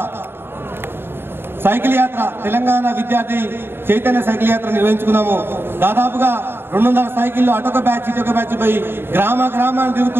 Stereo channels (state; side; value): late; left; 0.11 ms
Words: సైకిల్ యాత్ర, తెలంగాణ విద్యార్థి చైతన్య సైకిల్ యాత్ర నిర్వహించుకున్నాము. దాదాపుగా 200 సైకిళ్ళు అటొక బ్యాచ్ ఇటొక బ్యాచ్ పోయి గ్రామాన్ని